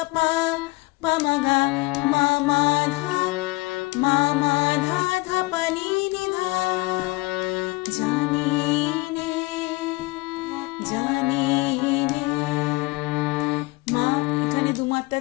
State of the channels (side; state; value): right; quieter; 23.9 dB